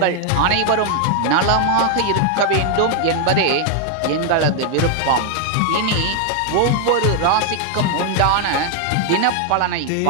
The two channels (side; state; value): both; different; correlation 0.00